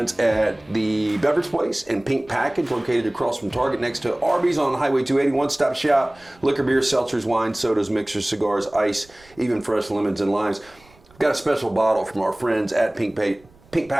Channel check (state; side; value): noise; right; rumble, 28 dB below the sound